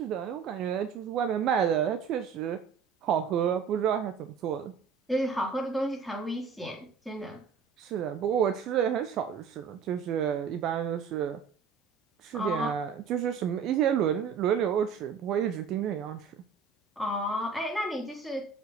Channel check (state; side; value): quieter; left; 6.4 dB